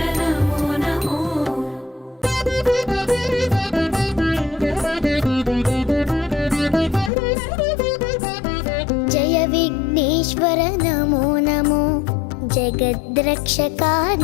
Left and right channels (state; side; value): drops out; right; at 7.1 s